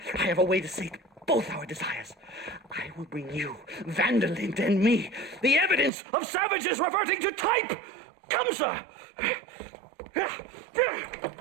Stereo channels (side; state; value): left; drops out; at 5.9 s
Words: I have a way to sate both our desires. I will bring you, Vanderlint and me, the evidence of savages reverting to type. Come, sir.